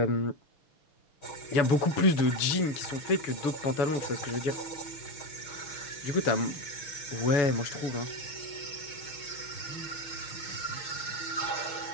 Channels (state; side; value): late; right; 6.9 ms